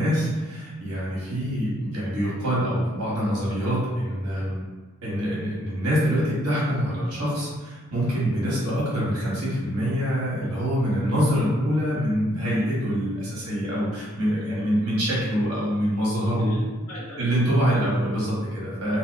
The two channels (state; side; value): normal; both; correlation 0.72